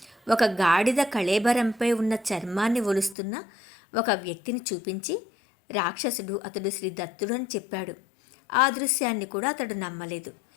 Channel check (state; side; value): drops out; right; at 3.2 s